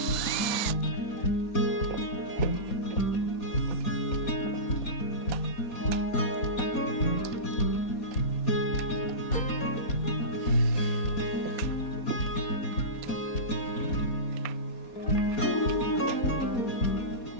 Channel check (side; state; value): right; late; 4.2 ms